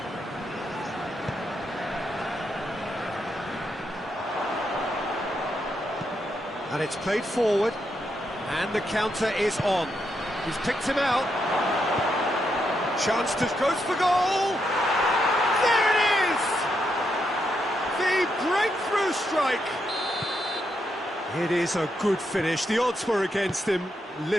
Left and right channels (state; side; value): normal; both; correlation 0.81